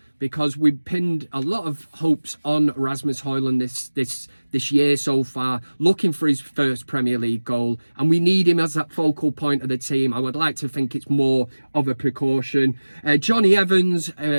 because we've pinned a lot of hopes on Rasmus Højlund this year so far, looking for his first Premier League goal, and we need him as that focal point of the team. I would like to think it's more of a precaution. Johnny Evans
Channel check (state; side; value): inverted; both; correlation -1.00